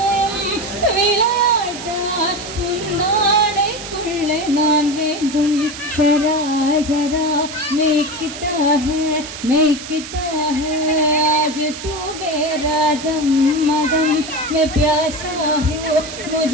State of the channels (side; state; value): right; noise; hiss, 11 dB below the sound